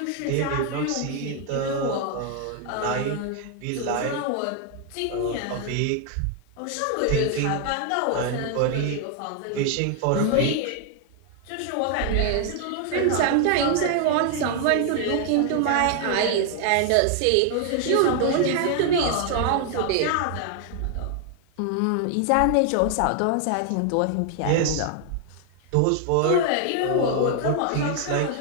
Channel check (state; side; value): different; both; correlation 0.00